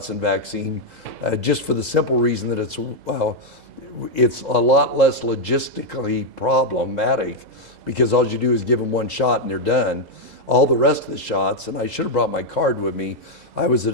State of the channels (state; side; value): late; left; 2.0 ms